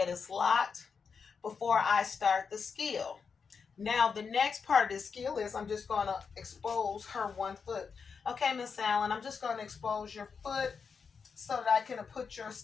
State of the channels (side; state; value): right; quieter; 5.7 dB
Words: is locked before I start the skill. Now, the next part of the skill is I'm just going to expose her one foot. Okay, Miss Allen, I'm just going to expose your foot so that I can put your